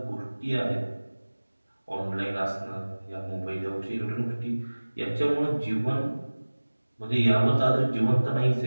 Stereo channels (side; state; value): both; inverted; correlation -1.00